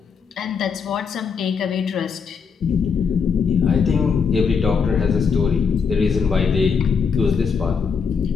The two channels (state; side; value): quieter; right; 6.0 dB